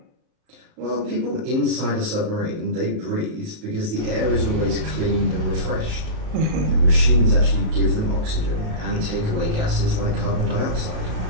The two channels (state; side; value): late; left; 37 ms